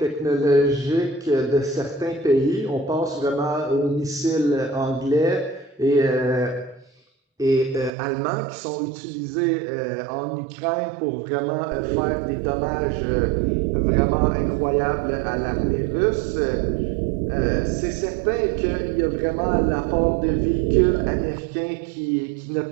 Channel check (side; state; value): left; drops out; at 7.9 s